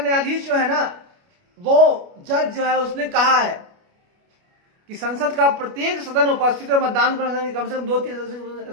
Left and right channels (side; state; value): left; late; 29 ms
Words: जो है ना, वो जज जो है उसने कहा है कि संसद का प्रत्येक सदन उपस्थित और मतदान करने कम से कम